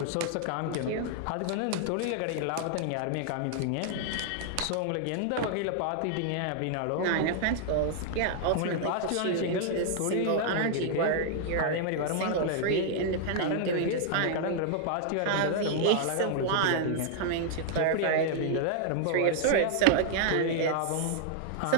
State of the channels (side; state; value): both; different; correlation -0.01